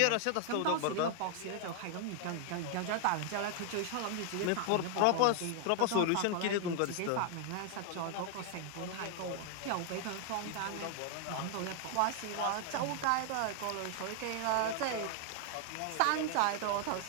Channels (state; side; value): different; both; correlation 0.00